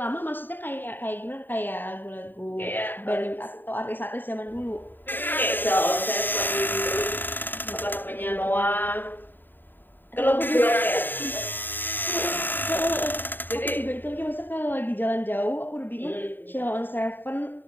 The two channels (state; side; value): late; right; 0.092 ms